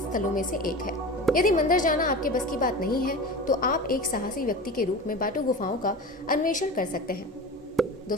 में से एक है। यदि मंदिर जाना आपके बस की बात नहीं है, तो आप एक साहसी व्यक्ति के रूप में बाटू गुफाओं का अन्वेषण कर सकते हैं।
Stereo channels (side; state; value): both; normal; correlation 0.31